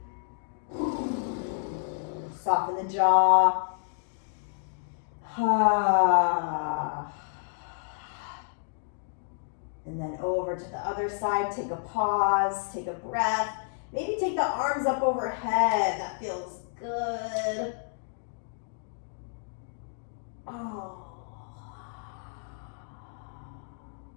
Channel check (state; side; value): silent; right; digital silence